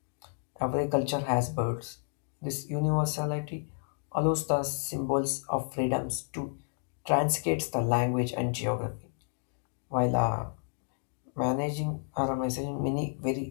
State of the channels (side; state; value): right; silent; digital silence